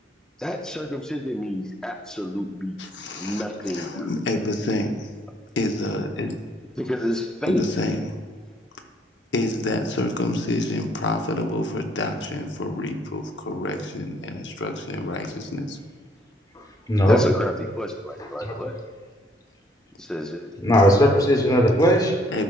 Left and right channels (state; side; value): normal; both; correlation 0.65